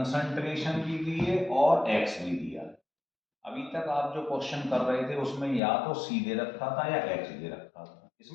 भी दी है और एक्स भी दिया है। अभी तक आप जो क्वेश्चन कर रहे थे उसमें या तो सी दे रखा था या एक्स दे रखा था,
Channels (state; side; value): drops out; right; at 5.6 s